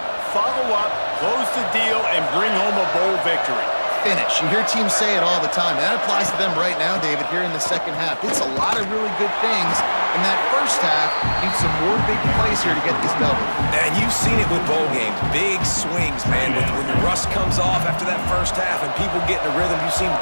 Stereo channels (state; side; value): inverted; both; correlation -1.00